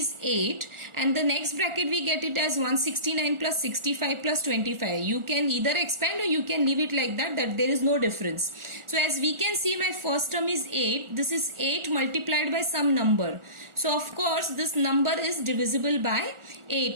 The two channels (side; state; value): left; late; 1.4 ms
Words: 8, and the next bracket we get it as 169 plus 65 plus 25. You can either expand or you can leave it like that there is no difference. So as we can see, my first term is 8. This is 8 multiplied by some number. So of course this number is divisible by